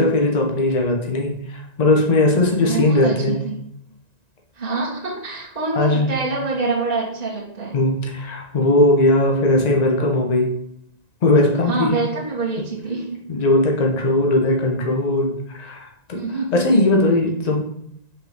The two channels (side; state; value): right; late; 1.9 ms